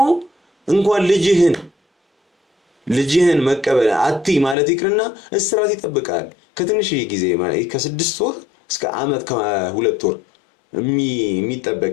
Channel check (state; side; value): drops out; right; at 4.5 s